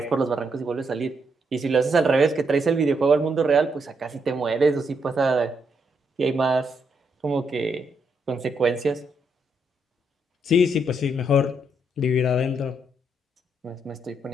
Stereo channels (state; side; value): normal; both; correlation 0.77